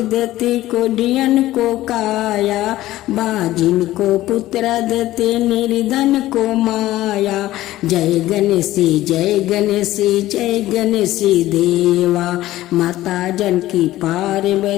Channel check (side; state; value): right; quieter; 15.5 dB